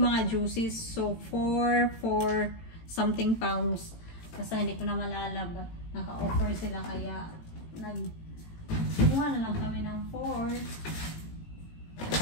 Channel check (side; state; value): right; late; 18 ms